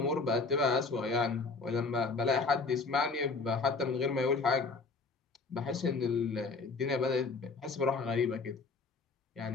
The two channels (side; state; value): right; quieter; 4.1 dB